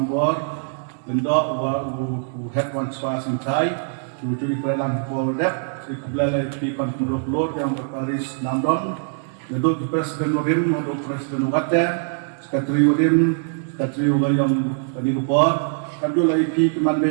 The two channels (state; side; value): silent; left; digital silence